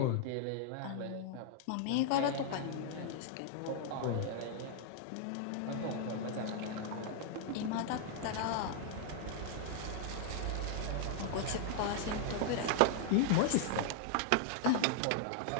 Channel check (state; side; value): different; both; correlation -0.01